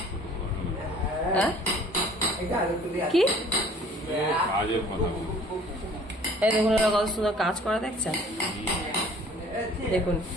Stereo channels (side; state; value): both; normal; correlation 0.52